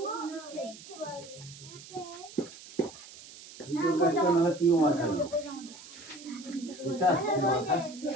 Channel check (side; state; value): right; noise; hiss, 17 dB below the sound